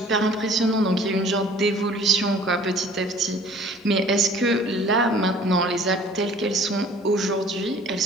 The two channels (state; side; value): normal; both; correlation 0.51